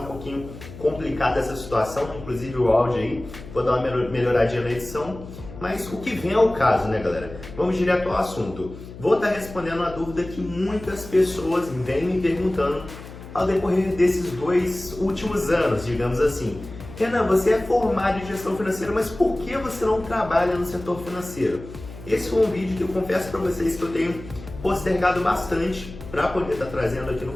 um pouquinho complicada essa situação, inclusive o áudio aí, vou dar uma melhoradinha na edição. Mas o que vem ao caso, né galera? Vamos direto ao assunto. Vou estar respondendo a dúvida que muitas pessoas vêm me perguntando ao decorrer desses 2 últimos anos, digamos assim. Renan, você é formado em gestão financeira, mas por que você não trabalha no setor financeiro? Esse foi um vídeo que eu confesso para vocês que eu tenho postergado bastante para poder estar trazendo aqui no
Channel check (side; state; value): left; noise; hum, 15 dB below the sound